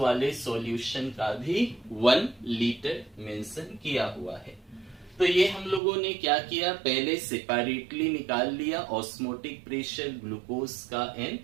सॉल्यूशन का भी 1 लीटर मेंशन किया हुआ है। तो ये हम लोगों ने क्या किया, पहले सेपरेटली निकाल लिया ऑस्मोटिक प्रेशर ग्लूकोज का एंड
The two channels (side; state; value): left; drops out; at 5.8 s